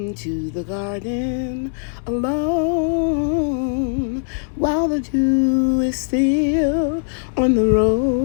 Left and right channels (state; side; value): silent; right; digital silence